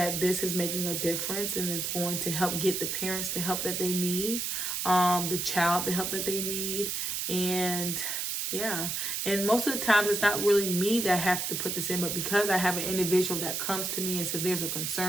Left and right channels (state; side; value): noise; right; hiss, 2 dB below the sound